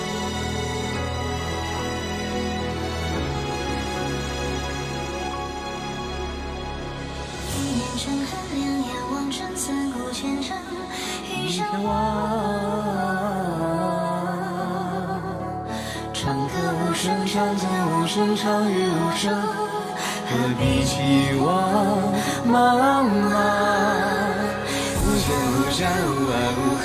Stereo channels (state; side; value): identical; both; correlation 1.00